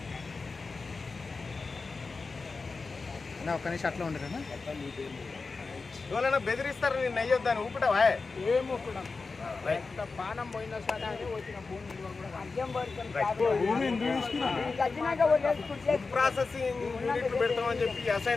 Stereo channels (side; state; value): right; quieter; 4.2 dB